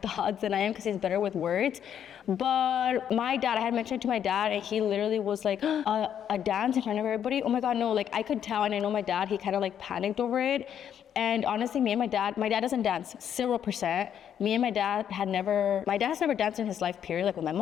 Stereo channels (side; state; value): right; quieter; 9.2 dB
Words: thoughts than I am, because he's better with words. But my dad, I had mentioned to my dad, and he literally was like, a dance in front of everybody? Oh my God, no. Like, I could tell, and I know my dad, he kind of like panicked over it. And honestly, me and my dad doesn't dance, 0%. Me and my dad has never danced in his life, period. Like with my